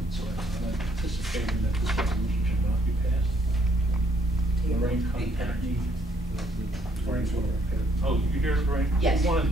so I'm anticipating that this resolution should not be passed. Lorraine contacted me. Oh, you hear it, Lorraine? Yes.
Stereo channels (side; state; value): both; normal; correlation 0.68